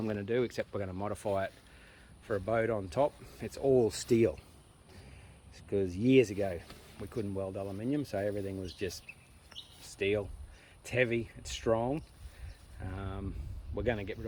going to do, except we're going to modify it for a boat on top. It's all steel, because years ago we couldn't weld aluminium, so everything was just steel. It's heavy, it's strong. We're going to get rid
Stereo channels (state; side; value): identical; both; correlation 1.00